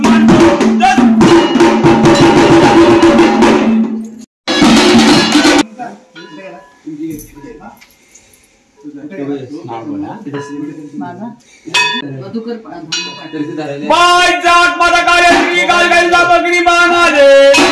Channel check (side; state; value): both; identical; correlation 1.00